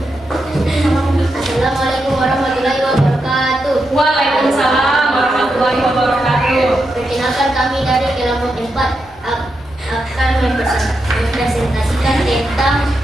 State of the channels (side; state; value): both; normal; correlation 0.85